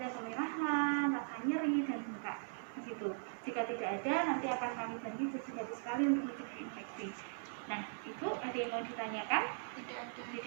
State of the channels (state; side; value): silent; left; digital silence